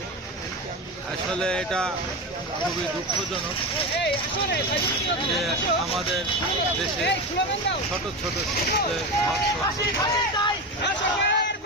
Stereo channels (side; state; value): both; normal; correlation 0.21